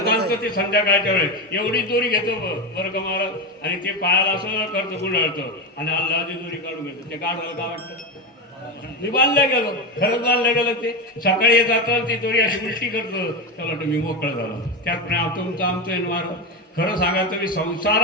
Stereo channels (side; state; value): both; normal; correlation 0.16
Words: आणतं ते संध्याकाळच्या वेळेस, एवढी दोरी घेतो बरं का महाराज, आणि ते पायाला असं करतं गुंडाळतं, आणि अल्लाची दोरी काढून घेतो. ते गाढवाला काय वाटतं? मी बांधल्या गेलो, खरंच बांधल्या गेलं. ते सकाळी जातं, ती दोरी अशी उलटी करतं, त्याला वाटतं मी मोकळं झालो. त्याप्रमाणे तुमचं आमचं महाराज. खरं सांगा, तुम्ही